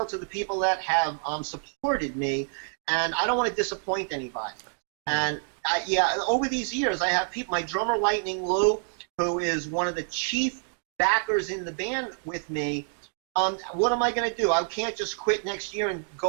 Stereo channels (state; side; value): silent; left; 60 dB below the other